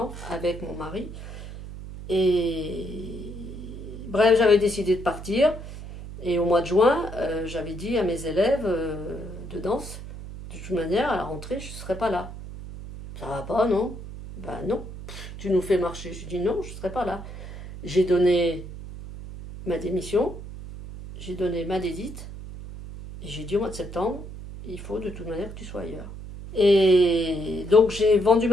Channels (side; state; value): right; noise; hum, 11 dB below the sound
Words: avec mon mari. Et bref, j'avais décidé de partir. Et au mois de juin, j'avais dit à mes élèves de danse, de toute manière, à la rentrée, je ne serai pas là. Ça va pas, non? Ben non. Tu nous fais marcher. Je dis non, je ne serai pas là. J'ai donné ma démission, j'ai donné ma dédite, et j'ai dit au mois de septembre, il faut de toute manière que tu sois ailleurs. Et donc j'ai vendu